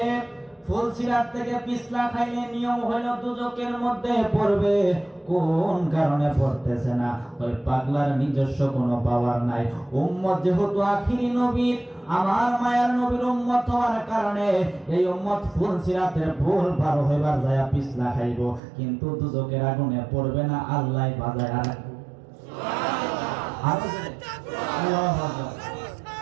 ফুলসিরাত থেকে পিছলা খাইলে নিয়ম হইল দুজকের মধ্যে পড়বে। কোন কারণে পড়তেছে না? ওই পাগলার নিজস্ব কোনো পাওয়ার নাই। উম্মত যেহেতু আখিরি নবীর, আমার মায়ার নবীর উম্মত হওয়ার কারণে এই উম্মত ফুলসিরাতের পুল পার হইবার যায় পিছলা খাইব, কিন্তু দুজকের আগুনে পড়বে না। আল্লাহ বাজায় আর আল্লাহু আকবার।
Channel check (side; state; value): left; drops out; at 18.6 s